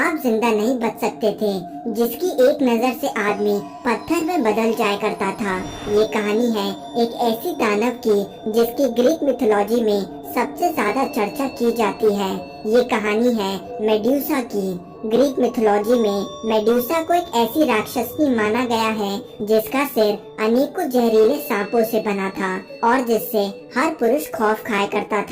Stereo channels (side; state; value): both; identical; correlation 1.00